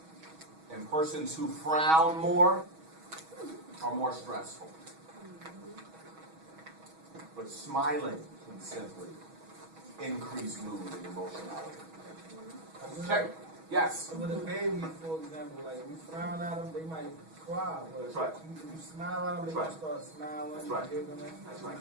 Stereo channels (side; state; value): left; late; 6.2 ms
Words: And persons who frown more are more stressful. But smiling can simply increase mood and emotionality. Check. Yes? With a baby, for example, like we frown at them, they might cry. But That's right. You smile at them, they That's right. might start smiling. That's right. Giggling, That's right.